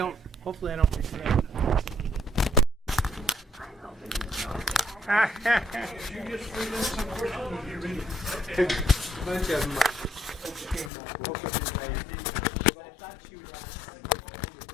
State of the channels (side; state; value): right; drops out; at 10.9 s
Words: regret it. Bunch of them.